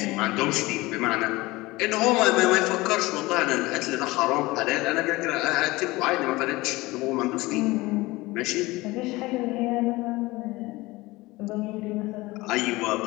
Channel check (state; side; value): quieter; right; 20.7 dB